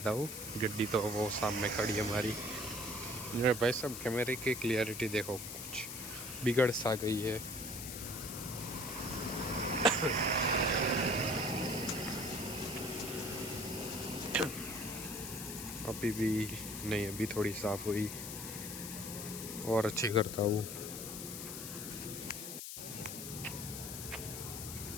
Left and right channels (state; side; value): noise; left; hiss, 8 dB below the sound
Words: हूँ। गड्डी तो वो सामने खड़ी है हमारी। मेरे भाई साहब कैमरे की क्लियरिटी देखो कुछ बिगड़ सा गई है। अभी भी नहीं, अभी थोड़ी साफ हुई और अच्छी करता हूँ।